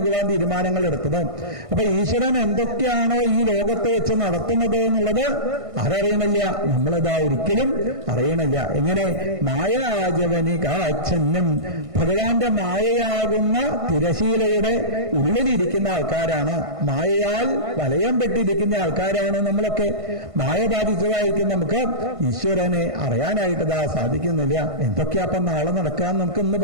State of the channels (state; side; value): late; left; 1.5 ms